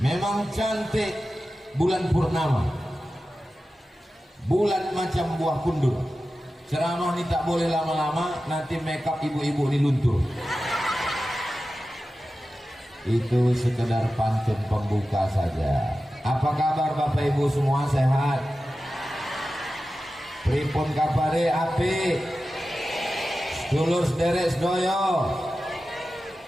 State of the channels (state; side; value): normal; both; correlation 0.94